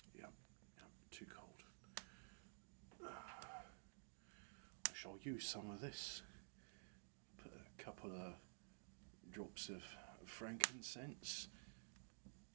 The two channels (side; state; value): left; silent; digital silence